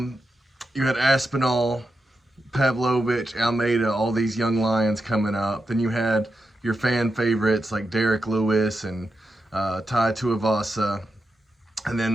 had Aspinall, Pavlovich, Almeida, all these young lions coming up. Then you had your fan favorites like Derek Lewis and Tai Tuivasa, and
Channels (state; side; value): normal; both; correlation 0.87